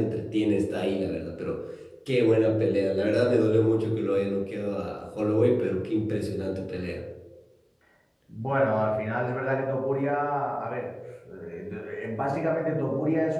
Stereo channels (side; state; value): both; identical; correlation 1.00